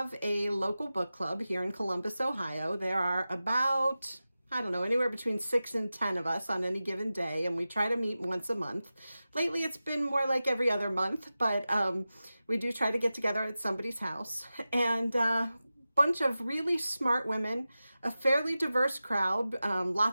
a local book club here in Columbus, Ohio. There are about, anywhere between 6 and 10 of us on any given day, and we try to meet once a month. Lately it's been more like every other month, but we do try to get together at somebody's house. And bunch of really smart women, a fairly diverse crowd,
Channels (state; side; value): inverted; both; correlation -0.94